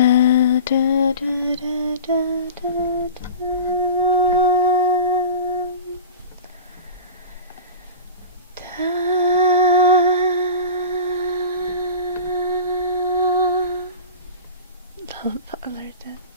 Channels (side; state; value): both; inverted; correlation -0.34